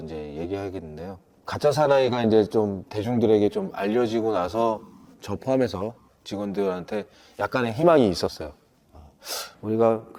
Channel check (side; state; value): both; identical; correlation 1.00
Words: 이제 얘기하겠는데요. 가짜 사나이가 이제 좀 대중들에게 좀 알려지고 나서 저 포함해서 직원들한테 약간의 희망이 있었어요. 우리가